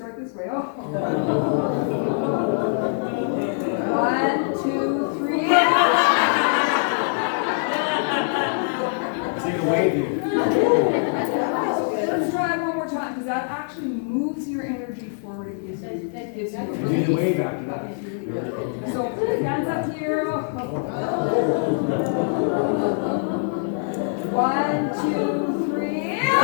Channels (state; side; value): silent; right; 63 dB below the other